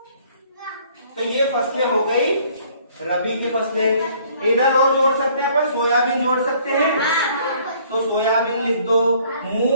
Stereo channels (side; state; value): both; inverted; correlation -0.59